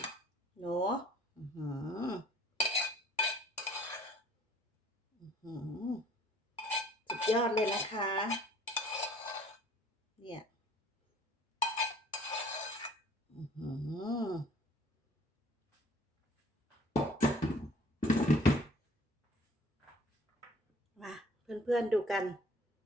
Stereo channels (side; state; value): both; normal; correlation 0.54